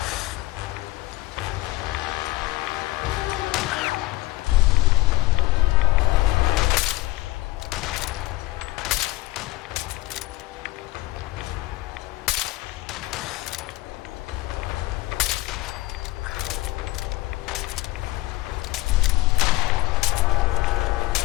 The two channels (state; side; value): quieter; right; 18.9 dB